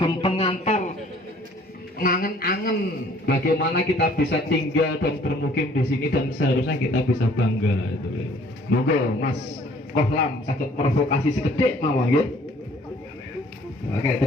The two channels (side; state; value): both; normal; correlation 0.57